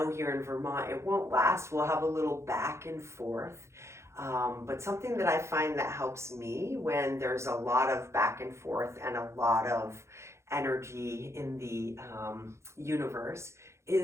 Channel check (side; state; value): left; late; 0.13 ms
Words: here in Vermont, it won't last. We'll have a little back and forth. But something that I find that helps me when there's a lot of back and forth and a lot of energy in the universe